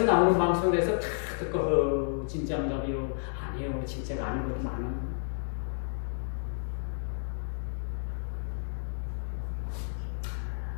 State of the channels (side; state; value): right; silent; digital silence